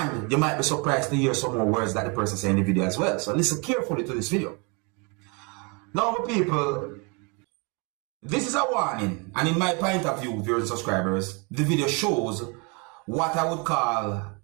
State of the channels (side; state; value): left; quieter; 31.9 dB